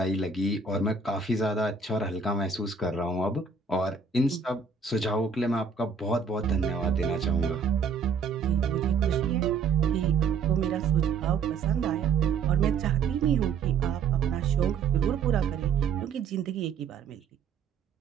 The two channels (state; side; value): quieter; left; 5.5 dB